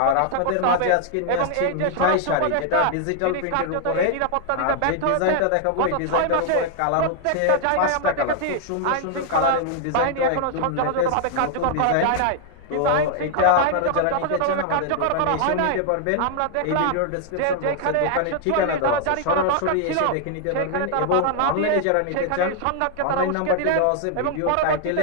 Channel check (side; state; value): both; different; correlation 0.00